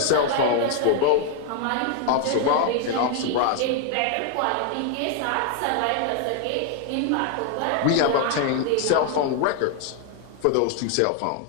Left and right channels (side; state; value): both; different; correlation 0.00